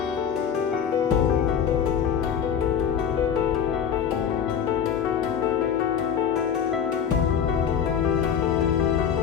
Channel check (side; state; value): right; quieter; 8.0 dB